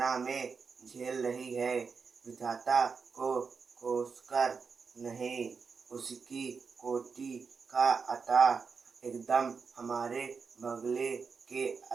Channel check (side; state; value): left; quieter; 5.4 dB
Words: में झेल रही है। विधाता को कोसकर नहीं, उसकी कोटि का अता एकदम हमारे बगले के